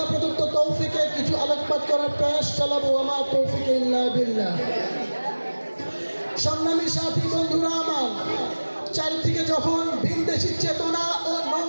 প্রদত্ত তৌফিকে কিছু আলোকপাত করার প্রয়াস চালাবো। আমার তৌফিকে ইল্লা বিল্লাহ। সংগ্রামী সাথী বন্ধুরা আমার, চারিদিকে যখন ভিনদেশী চেতনা ও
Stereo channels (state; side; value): inverted; both; correlation -1.00